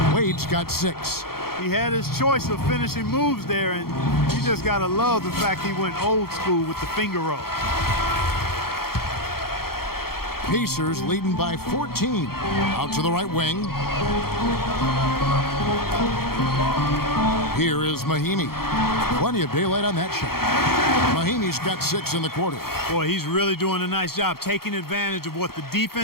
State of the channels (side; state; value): right; late; 0.94 ms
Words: Wade's got 6. He had his choice of finishing moves there, and you just got to love the fact he went old school with the finger roll. Pacers leading by 14. Out to the right wing. Here is Mahimi. Plenty of daylight on that shot. Mahimi's got 6 in the quarter. Boy, he's really doing a nice job taking advantage of what the